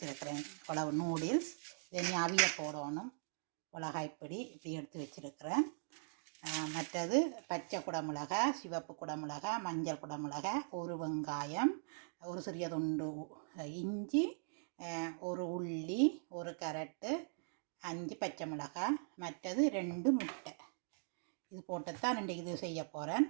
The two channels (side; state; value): left; silent; digital silence